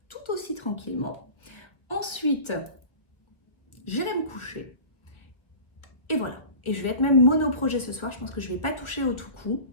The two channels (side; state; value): right; late; 1.1 ms